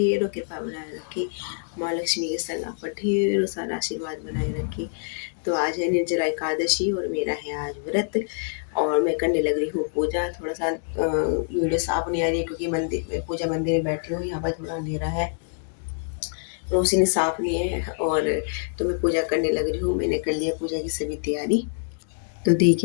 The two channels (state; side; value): silent; right; digital silence